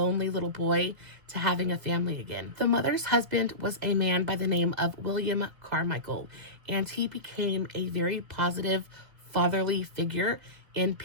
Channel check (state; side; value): late; left; 1.7 ms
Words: little boy to having a family again. The mother's husband was a man by the name of William Carmichael, and he became a very positive, fatherly figure in